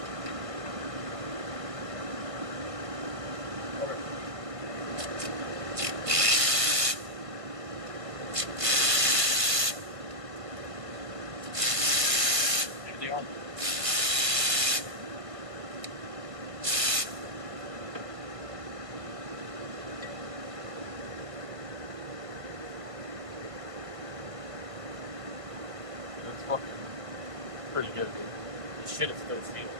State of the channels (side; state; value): left; late; 1.5 ms